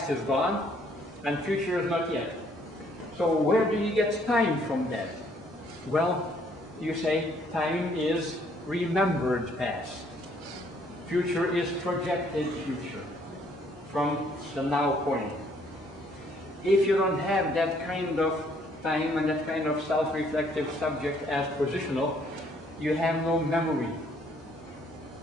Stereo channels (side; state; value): both; normal; correlation 0.65